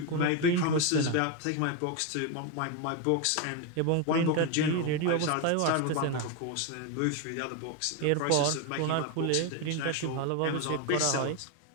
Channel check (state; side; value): different; both; correlation 0.02